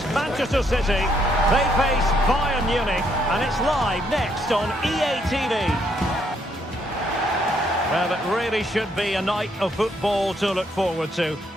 Manchester City. They face Bayern Munich, and it's live next on EA TV. Well, it really should be a night of football to look forward to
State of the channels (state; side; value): normal; both; correlation 0.72